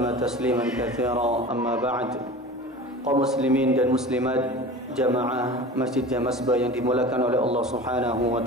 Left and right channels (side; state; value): both; normal; correlation 0.36